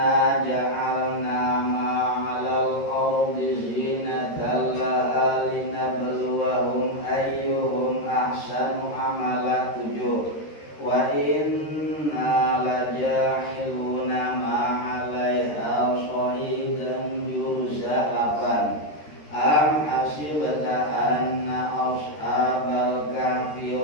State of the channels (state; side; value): late; right; 13 ms